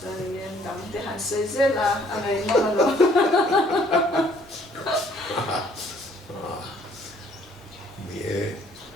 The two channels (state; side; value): normal; both; correlation 0.61